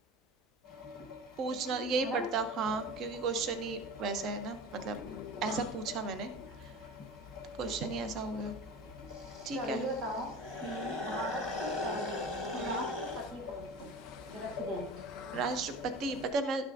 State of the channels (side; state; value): both; normal; correlation 0.36